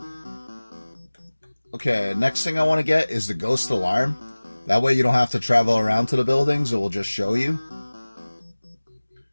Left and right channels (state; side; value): inverted; both; correlation -1.00